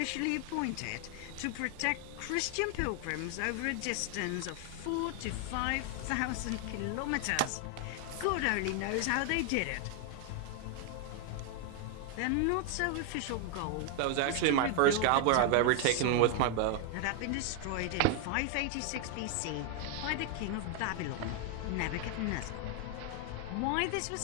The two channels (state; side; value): different; both; correlation 0.00